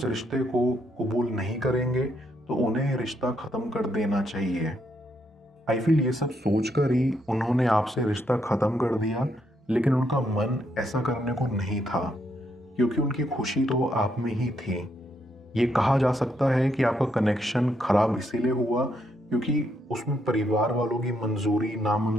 रिश्ते को कबूल नहीं करेंगे तो उन्हें ये रिश्ता ख़त्म कर देना चाहिए। आई फील ये सब सोचकर ही उन्होंने आपसे रिश्ता ख़त्म कर दिया, लेकिन उनका मन ऐसा करने को नहीं था, क्योंकि उनकी खुशी तो आप में ही थी। ये कहा जा सकता है कि आपका कनेक्शन खराब इसीलिए हुआ क्योंकि उसमें परिवार वालों की मंजूरी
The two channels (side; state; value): both; normal; correlation 0.76